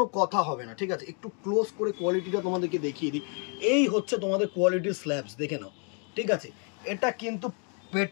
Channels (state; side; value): quieter; right; 38.0 dB